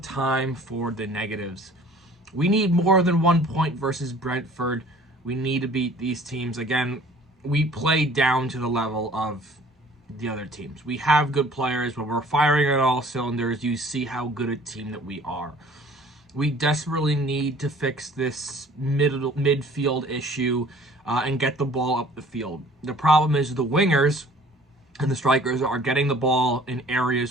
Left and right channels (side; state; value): both; normal; correlation 0.51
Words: for the negatives. We need more than 1 point versus Brentford. We need to beat these teams. Again, we play down to the level of the other teams. We have good players, but we're firing on all cylinders. You see how good a team that we are. We desperately need to fix this midfield issue and get the ball up the field. The problem is the wingers and the strikers are getting the ball in